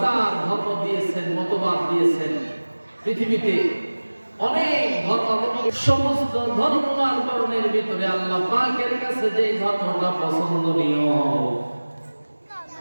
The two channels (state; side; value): inverted; both; correlation -1.00